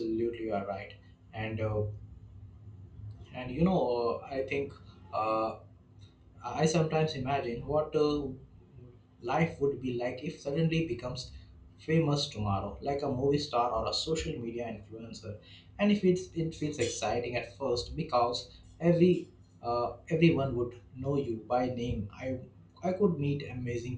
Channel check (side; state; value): both; identical; correlation 1.00